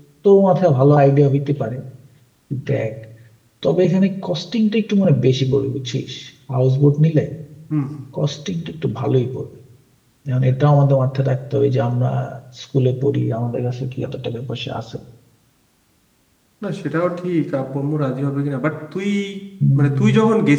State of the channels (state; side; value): identical; both; correlation 1.00